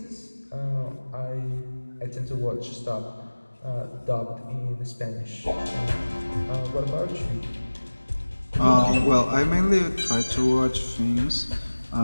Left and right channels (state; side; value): inverted; both; correlation -1.00